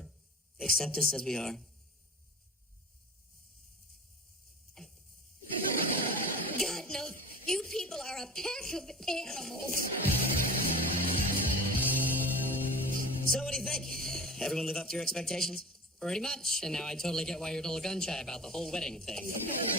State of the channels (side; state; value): both; normal; correlation 0.36